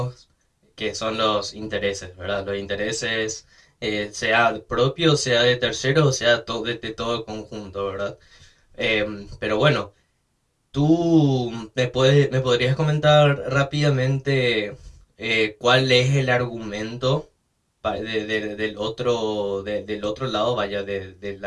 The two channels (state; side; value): identical; both; correlation 1.00